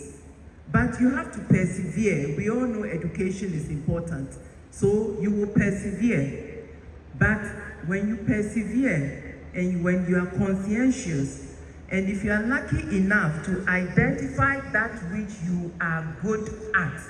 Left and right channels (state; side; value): identical; both; correlation 1.00